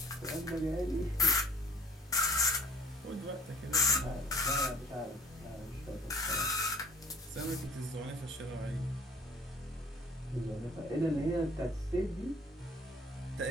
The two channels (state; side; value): normal; both; correlation 0.54